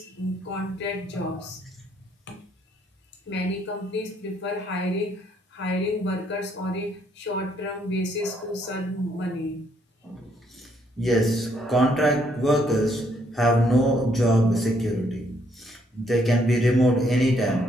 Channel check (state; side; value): normal; both; correlation 0.70